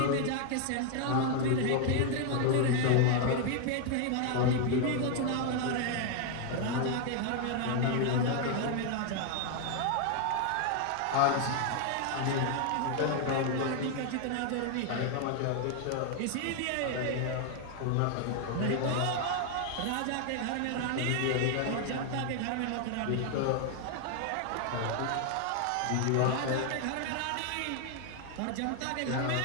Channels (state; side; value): different; both; correlation 0.00